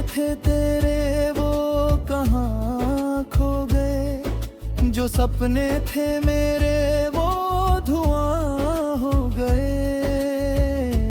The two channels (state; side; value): identical; both; correlation 1.00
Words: थे तेरे वो कहाँ खो गए, जो सपने थे मेरे वो धुआं हो गए।